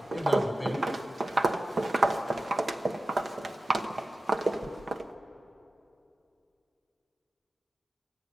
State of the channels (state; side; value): normal; both; correlation 0.94